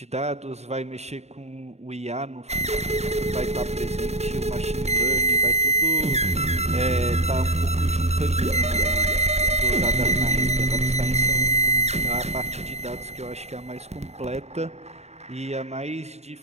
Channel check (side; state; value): left; late; 0.32 ms